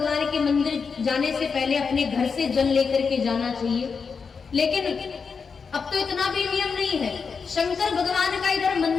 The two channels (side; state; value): right; quieter; 5.5 dB